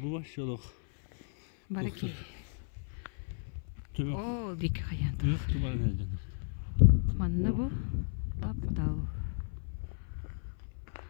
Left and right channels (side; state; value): right; silent; 55 dB below the other